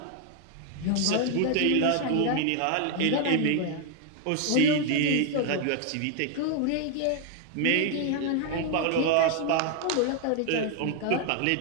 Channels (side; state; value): both; different; correlation 0.00